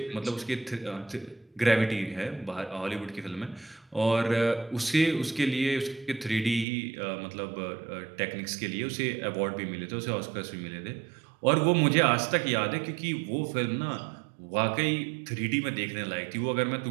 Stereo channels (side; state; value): left; drops out; at 6.7 s